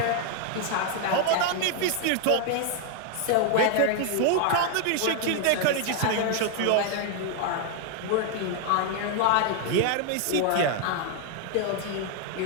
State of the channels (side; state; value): both; different; correlation 0.00